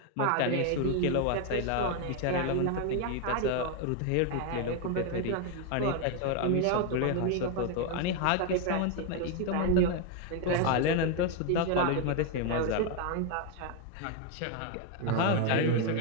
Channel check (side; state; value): both; different; correlation 0.01